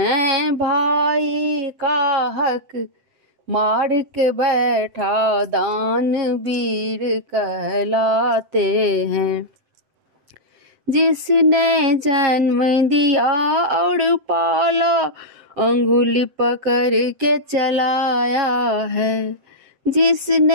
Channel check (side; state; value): left; late; 7.8 ms